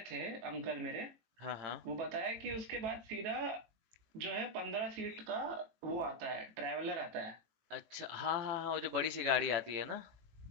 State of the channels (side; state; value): left; late; 18 ms